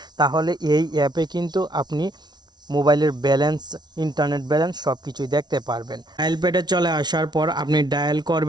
তাহলে এই অ্যাপে কিন্তু আপনি মোবাইলের ব্যালেন্স, ইন্টারনেট ব্যালেন্স সব কিছুই দেখতে পারবেন। ডায়াল প্যাডে চলে আসার পর আপনি ডায়াল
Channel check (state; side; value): late; left; 0.20 ms